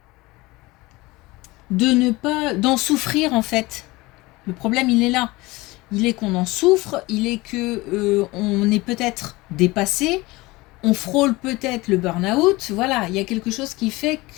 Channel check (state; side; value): quieter; right; 21.5 dB